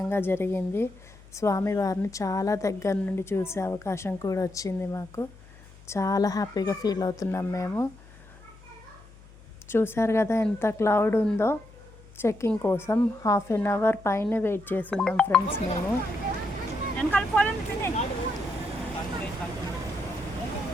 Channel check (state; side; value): noise; left; hum, 22 dB below the sound